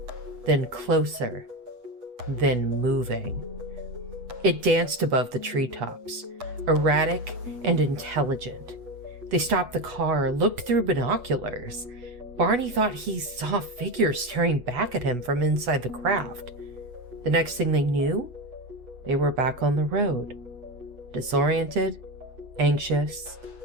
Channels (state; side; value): late; left; 8.1 ms